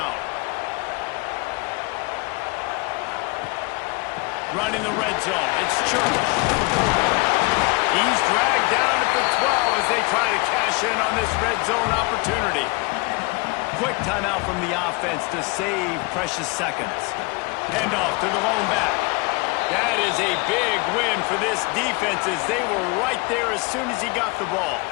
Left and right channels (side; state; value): right; quieter; 27.2 dB